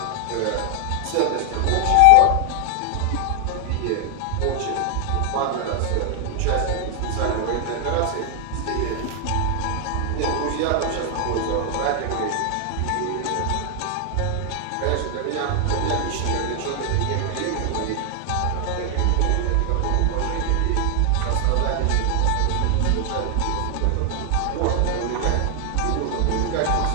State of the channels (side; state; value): both; different; correlation 0.00